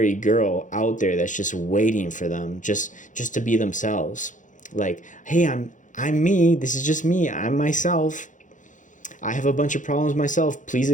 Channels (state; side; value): late; right; 0.37 ms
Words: girl out there that's just waiting for them just to be themselves. Like, hey, I'm me. This is just me. I'm myself. I have a bunch of problems myself. Please